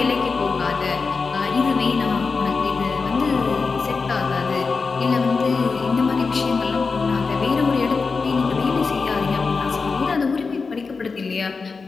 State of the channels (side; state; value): right; quieter; 4.6 dB